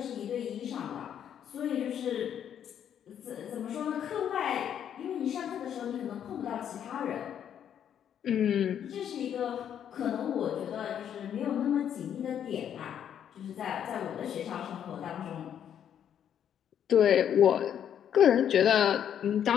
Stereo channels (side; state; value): right; quieter; 9.3 dB